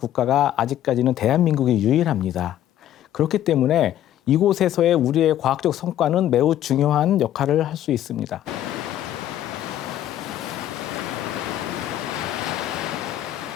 아직까지는 대한민국이 유일합니다. 그렇기 때문에 이곳에서의 우리의 과학적 성과는 매우 중요한 역할을 할 수 있습니다.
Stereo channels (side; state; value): right; quieter; 12.0 dB